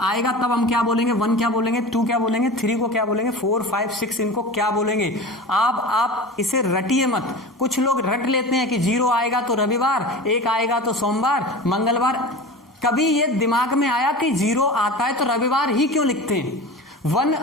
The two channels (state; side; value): normal; both; correlation 0.32